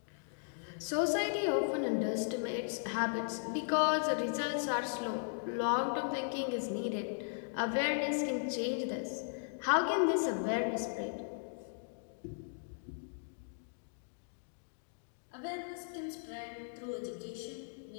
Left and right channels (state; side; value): silent; right; digital silence